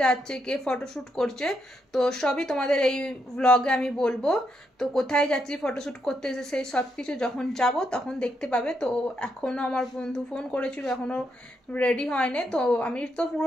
যাচ্ছে, কে ফটোশ্যুট করছে, তো সবই তোমাদের এই ব্লগে আমি বলবো। তো কোথায় যাচ্ছি ফটোশ্যুট করতে, সেই সব কিছু যখন যাব তখন দেখতে পাবে। তো এখনও আমার বন্ধু ফোন করেছিল, এখনও রেডি হয়নি। তো আমি তো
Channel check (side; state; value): both; normal; correlation 0.79